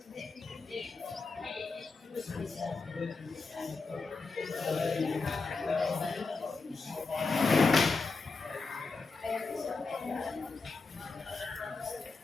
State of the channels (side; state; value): right; quieter; 4.2 dB